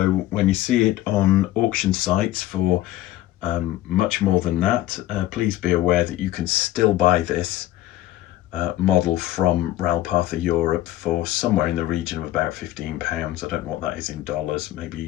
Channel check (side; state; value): right; quieter; 14.9 dB